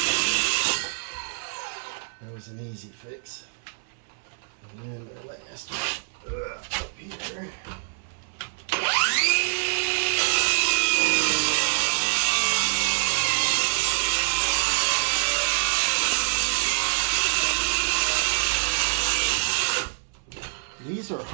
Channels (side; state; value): left; silent; 59 dB below the other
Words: That was an easy fix. And then the last one up here. These are